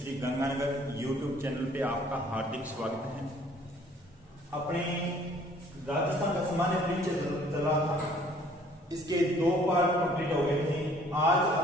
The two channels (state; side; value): normal; both; correlation 0.57